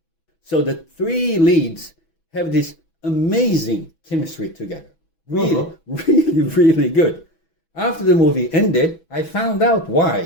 So the three leads have this amazing chemistry together. Really good. After the movie ended, I found out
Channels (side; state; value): right; late; 6.1 ms